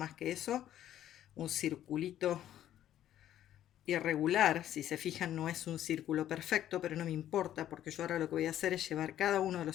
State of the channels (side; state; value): right; quieter; 11.8 dB